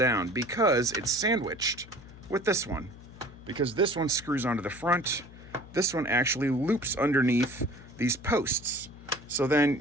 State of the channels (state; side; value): noise; left; hum, 19 dB below the sound